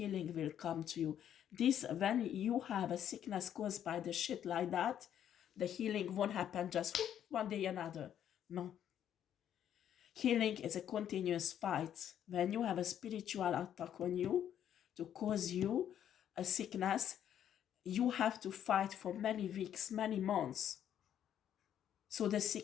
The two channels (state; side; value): quieter; right; 10.0 dB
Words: will come to you. This, when you have a sickness caused by the shit like that, the healing won't happen just one day another. No. Healing is a continuous fight. When you have a spiritual attack on you to cause you a sickness, you have to fight for many weeks, many months, so the